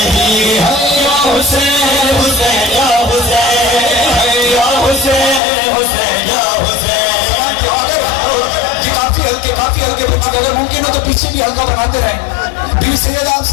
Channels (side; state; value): right; drops out; at 5.4 s